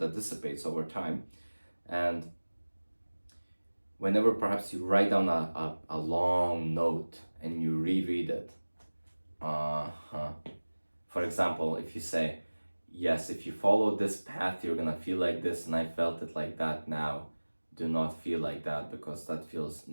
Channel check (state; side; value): inverted; both; correlation -1.00